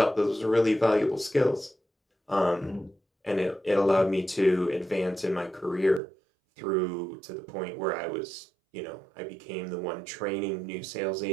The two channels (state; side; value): drops out; left; at 6.0 s